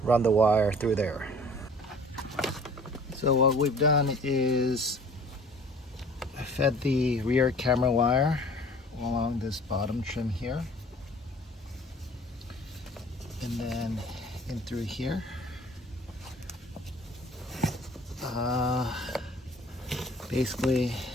run the wire through there. So what we've done is I fed the rear camera wire along this bottom trim here. and then in through here. Basically,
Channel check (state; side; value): normal; both; correlation 0.49